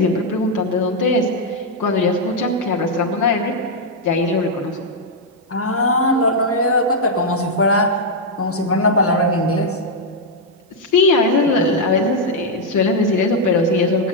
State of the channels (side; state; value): both; normal; correlation -0.03